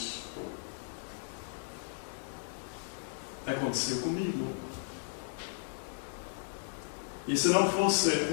aconteceu comigo. E se não fosse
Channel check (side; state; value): right; silent; 54 dB below the other